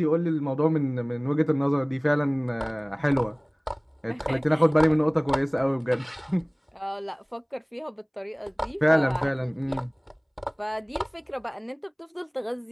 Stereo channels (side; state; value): both; identical; correlation 1.00